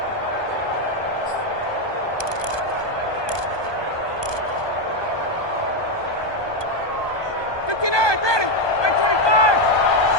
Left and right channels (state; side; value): late; right; 1.2 ms